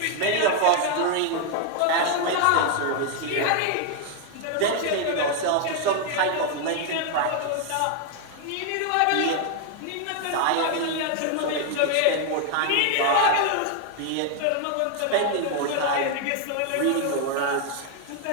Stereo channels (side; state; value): both; different; correlation 0.00